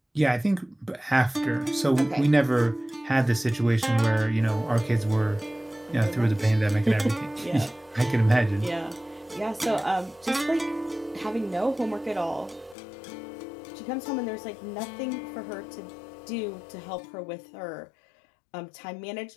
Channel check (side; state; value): right; drops out; at 12.8 s